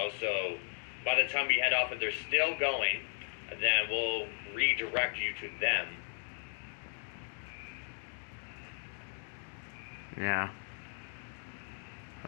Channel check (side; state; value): right; silent; 54 dB below the other